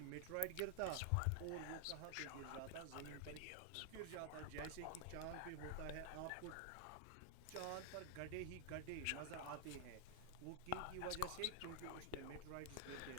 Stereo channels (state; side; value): different; both; correlation 0.00